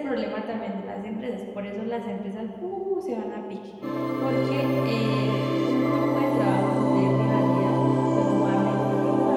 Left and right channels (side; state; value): both; identical; correlation 1.00